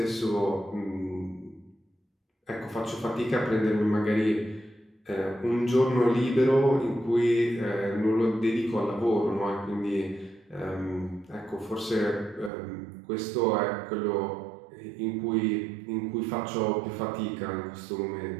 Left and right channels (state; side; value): drops out; left; at 12.5 s